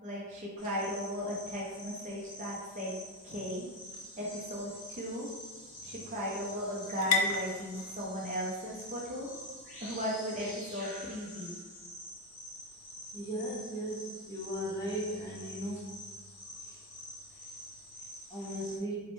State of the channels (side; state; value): both; normal; correlation 0.11